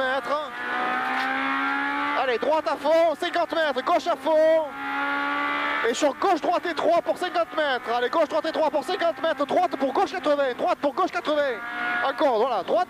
Allez, droite à fond, 50 mètres, gauche à fond. Et sur gauche, droite et 3 pour 50 mètres. Allez, gauche, droite et 3 pour 50 mètres, droite pour gauche 80, droite pour gauche 80. Encore, voilà, droite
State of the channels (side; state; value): both; identical; correlation 1.00